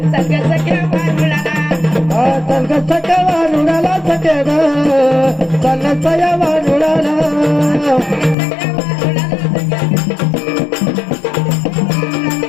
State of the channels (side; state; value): right; drops out; at 8.3 s